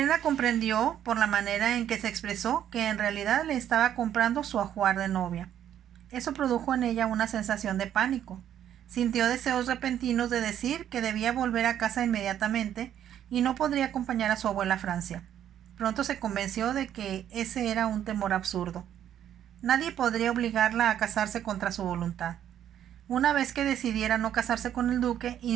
comprendió, por la manera en que se expresó, que en realidad le estaba comprando su ajuar de novia. Eso produjo en ella una sensación de pánico. Sintió deseos repentinos de decir que debía volver a casa inmediatamente y no podría acompañar a su abuela a Francia. Pronto se convenció de que ese era un temor absurdo. Nadie podría obligarla a casarse contra su voluntad. Una vez que decidiera no casarse con el duque,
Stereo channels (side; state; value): left; quieter; 10.4 dB